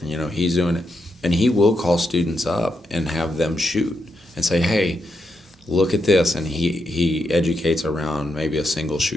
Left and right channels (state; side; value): normal; both; correlation 0.83